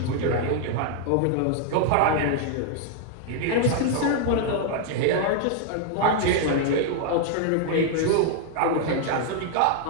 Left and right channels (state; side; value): different; both; correlation 0.00